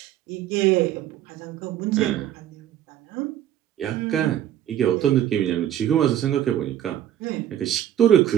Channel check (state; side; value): quieter; left; 11.5 dB